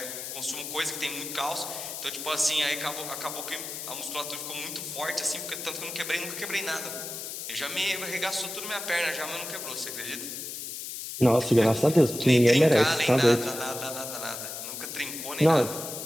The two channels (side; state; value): left; noise; hiss, 7 dB below the sound